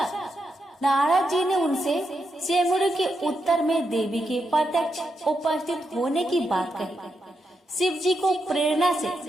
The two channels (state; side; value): normal; both; correlation 0.84